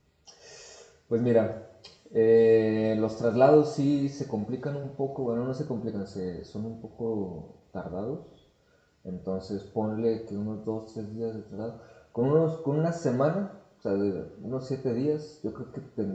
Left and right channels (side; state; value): both; identical; correlation 1.00